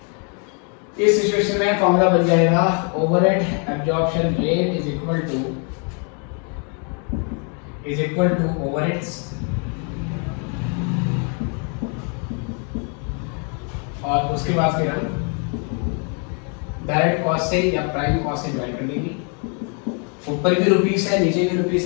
इस सिचुएशन में फॉर्मूला बन जाएगा overhead absorption rate is equal to overheads और उसके बाद फिर हम डायरेक्ट कॉस्ट से या प्राइम कॉस्ट से डिवाइड कर लेंगे। ऊपर भी रुपीस है नीचे भी रुपीस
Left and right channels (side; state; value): right; quieter; 38.7 dB